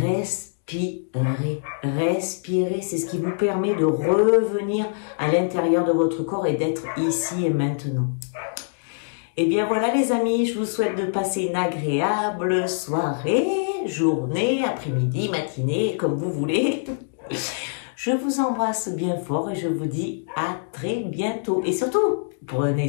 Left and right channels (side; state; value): right; silent; digital silence